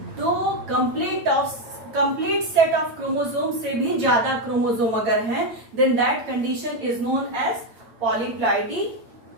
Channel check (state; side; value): late; left; 9.0 ms